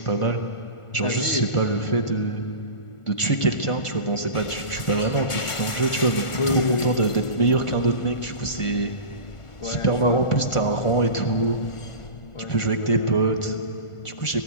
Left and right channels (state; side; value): late; right; 1.5 ms